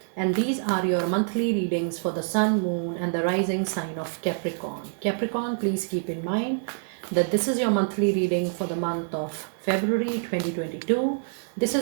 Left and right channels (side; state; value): left; silent; digital silence